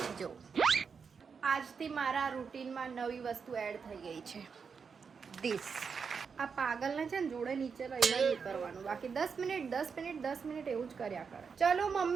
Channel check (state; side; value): quieter; left; 5.8 dB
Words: છે. જો આજથી મારા રૂટીનમાં નવી વસ્તુ એડ થઈ ગઈ છે, ધીસ. આ પાગલને છે ને જોડે નીચે લઈને ઉતરવાનું, બાકી 10 મિનિટ એવું જ કર્યા કરે. ચલો